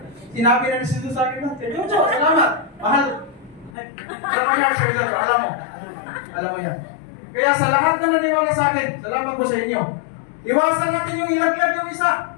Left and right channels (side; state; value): right; drops out; at 3.8 s